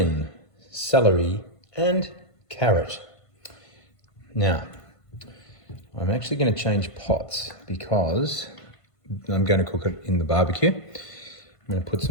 celery, and carrot. Now, I'm actually going to change pots because I'm going to cook it in the barbecue. I'm going to put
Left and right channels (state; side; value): late; right; 1.5 ms